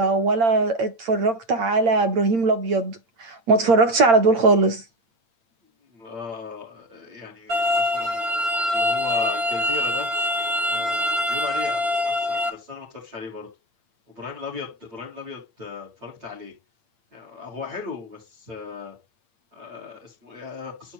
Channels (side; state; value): left; late; 8.8 ms